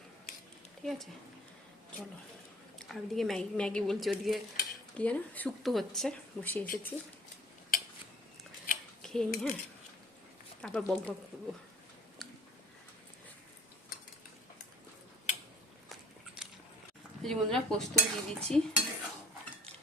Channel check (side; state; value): both; normal; correlation 0.52